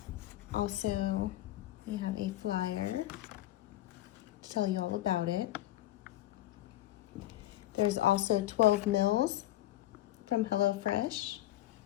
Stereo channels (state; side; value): quieter; right; 14.6 dB